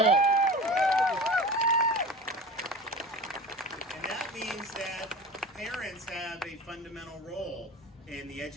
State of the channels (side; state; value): both; normal; correlation 0.35